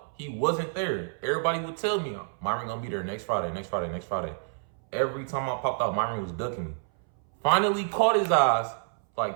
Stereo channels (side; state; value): left; silent; 59 dB below the other